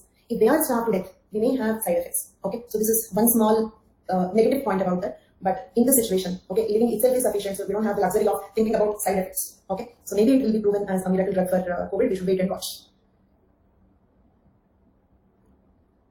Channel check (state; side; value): identical; both; correlation 1.00